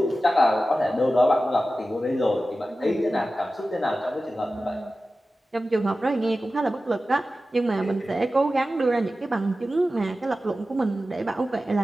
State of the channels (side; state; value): both; normal; correlation 0.94